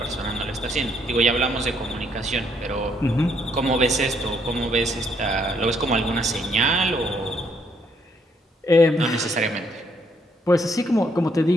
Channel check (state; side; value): normal; both; correlation 0.71